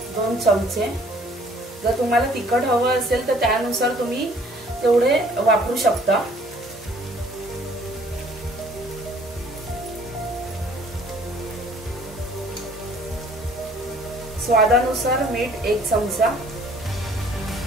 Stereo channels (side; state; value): both; normal; correlation 0.57